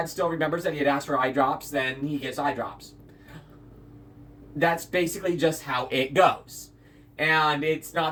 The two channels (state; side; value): identical; both; correlation 1.00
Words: still remembers that he had asked for eye drops, then he gets eye drops. That's basically just how it goes. And it's